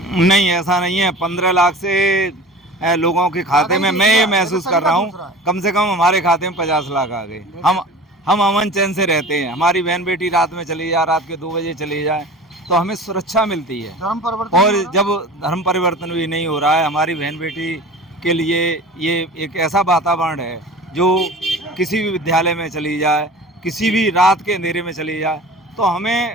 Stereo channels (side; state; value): both; normal; correlation 0.38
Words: नहीं, ऐसा नहीं है। 15 लाख से लोगों के खाते में मैं ये महसूस कर रहा हूँ, कम से कम हमारे खाते में 50 लाख आ गए। हम अमन चैन से रहते हैं। हमारी बहन बेटी रात में चली जाए, रात के 2 बजे चली जाए तो हमें सुरक्षा मिलती है। और जब धर्म परिवर्तन भी नहीं हो रहा है, हमारी बहन बेटी के लिए ये एक ऐसा वातावरण है जो किसी भी विद्यालय में चली जाए, किसी भी रात के अंधेरे में चली जाए, तो